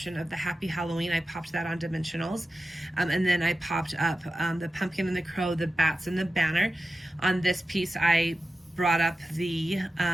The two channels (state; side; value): normal; both; correlation 0.93